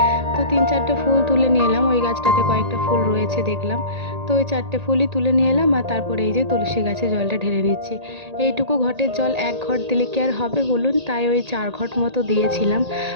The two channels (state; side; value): late; left; 1.8 ms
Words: তো 3-4টে ফুল তুলে নিয়ে এলাম। ওই গাছটাতে কয়েকটা ফুল রয়েছে দেখলাম, তো ওই 4টে ফুলই তুলে নিয়ে এলাম। আর তারপরে এই যে তুলসী গাছে জলটা ঢেলে নিচ্ছি। এইটুকু ঘটের জল 1 ঘট দিলে কি আর হবে বলুন? তাই ওই 4 ঘট মতো দিয়েছিলাম।